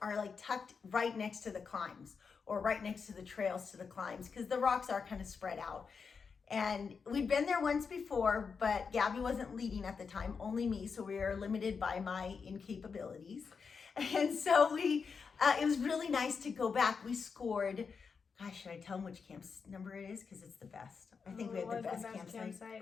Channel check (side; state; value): right; quieter; 5.6 dB